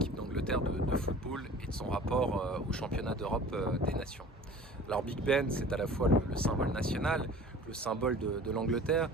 d'Angleterre de football et de son rapport au championnat d'Europe des nations. Alors Big Ben, c'est à la fois le symbole national, le symbole de l'Angleterre,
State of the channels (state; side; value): normal; both; correlation 0.43